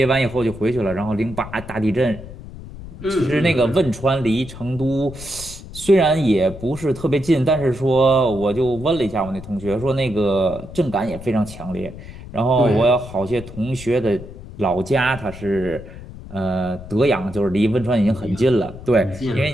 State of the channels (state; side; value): noise; left; rumble, 14 dB below the sound